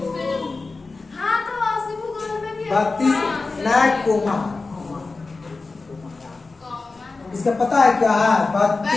हाँ तो अस्सी भूगोल में भी 32 लाख कोमा। इसका पता है क्या है?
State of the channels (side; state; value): right; quieter; 3.8 dB